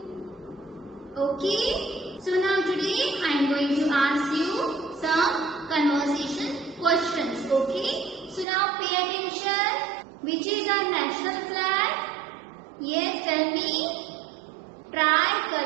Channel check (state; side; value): drops out; left; at 8.5 s